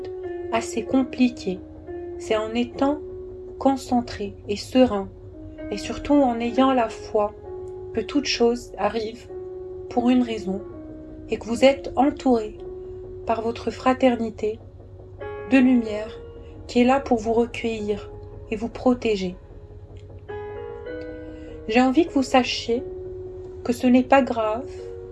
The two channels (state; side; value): identical; both; correlation 1.00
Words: assez compliquées. C'est en étant concentré et serein, et surtout en ayant la foi que toute chose arrive pour une raison, et que vous êtes entouré par votre fraternité de lumière qui est là pour vous recueillir et vous protéger. J'ai envie que vous sachiez que ce n'est pas grave